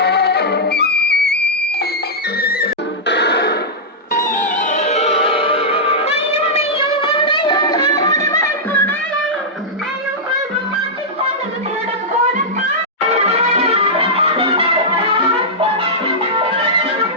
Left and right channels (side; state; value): both; normal; correlation -0.10